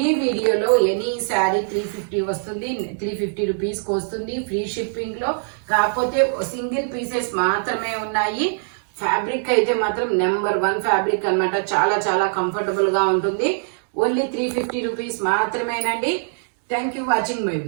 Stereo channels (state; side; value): silent; left; digital silence